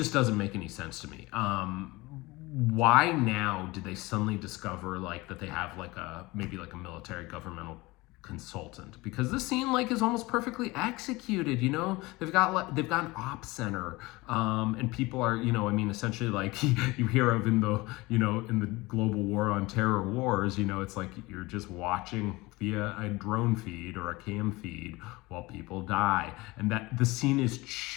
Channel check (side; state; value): right; quieter; 21.9 dB